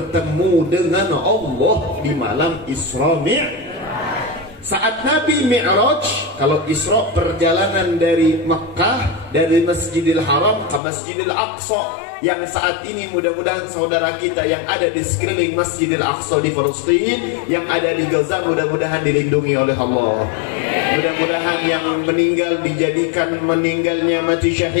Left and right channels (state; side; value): drops out; right; at 10.8 s